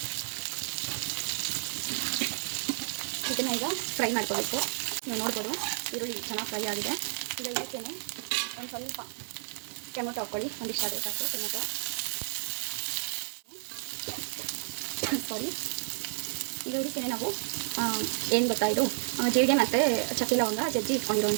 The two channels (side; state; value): left; silent; 57 dB below the other